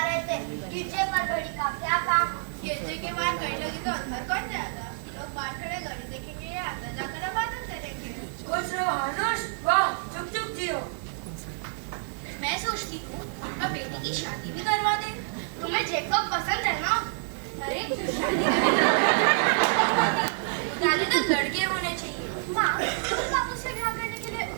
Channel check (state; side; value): silent; left; 59 dB below the other